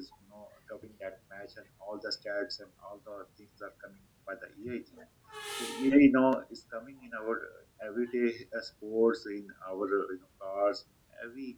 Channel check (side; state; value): both; identical; correlation 1.00